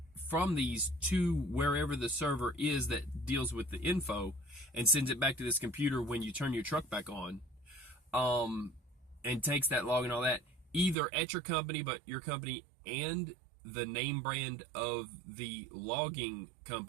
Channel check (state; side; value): drops out; left; at 11.0 s